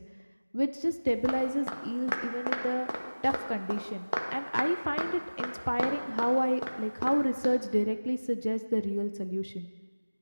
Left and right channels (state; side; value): inverted; both; correlation -1.00